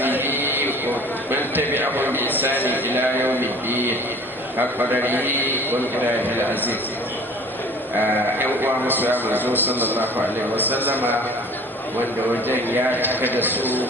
ومن تبعهم بإحسان إلى يوم الدين حق قدره ومقداره العزيز. uwa musu ya manzo sallallahu alaihi wasallama wanda wajen ya cika da su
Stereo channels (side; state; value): both; normal; correlation 0.47